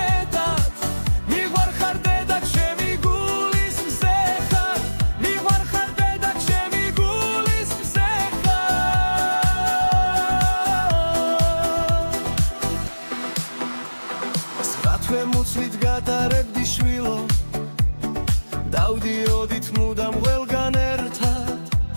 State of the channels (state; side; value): inverted; both; correlation -1.00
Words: მიყვარხარ დედა ჩემი გულის მზე ხარ მიყვარხარ დედა ჩემი გულის მზე ხარ თქვენ მუცლით გატარებდი შვილო დავდიოდით მუდამ ყველგან ერთად